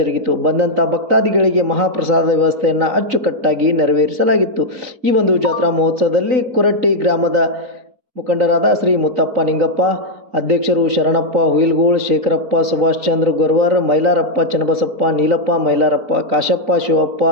ಬಂದಂಥ ಭಕ್ತಾದಿಗಳಿಗೆ ಮಹಾಪ್ರಸಾದ ವ್ಯವಸ್ಥೆಯನ್ನು ಅಚ್ಚುಕಟ್ಟಾಗಿ ನೆರವೇರಿಸಲಾಗಿತ್ತು. ಈ ಒಂದು ಜಾತ್ರಾ ಮಹೋತ್ಸವದಲ್ಲಿ ಕುರಟ್ಟಿ ಗ್ರಾಮದ ಮುಖಂಡರಾದ ಶ್ರೀ ಮುತ್ತಪ್ಪ ನಿಂಗಪ್ಪ, ಅಧ್ಯಕ್ಷರು ಶರಣಪ್ಪ ಹುಯಿಲ್ಗೋಳ್, ಶೇಖರಪ್ಪ, ಸುಭಾಷ್ ಚಂದ್ರ ಗೊರವರ್, ಮೈಲಾರಪ್ಪ ಚನ್ನಬಸಪ್ಪ, ನೀಲಪ್ಪ ಮೈಲಾರಪ್ಪ, ಕಾಶಪ್ಪ ಶಿವಪ್ಪ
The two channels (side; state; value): left; late; 3.9 ms